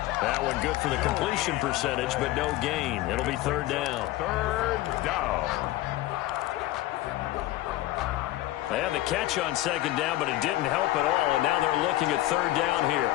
That one good for the completion percentage, but no gain. It'll be 3rd down. 3rd down. They had the catch on 2nd down, but it didn't help at all. And now they're looking at 3rd down here.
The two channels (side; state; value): right; quieter; 16.1 dB